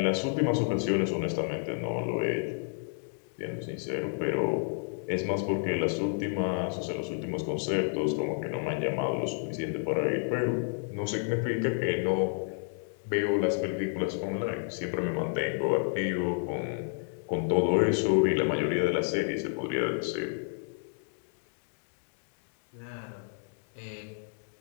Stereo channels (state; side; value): silent; right; 57 dB below the other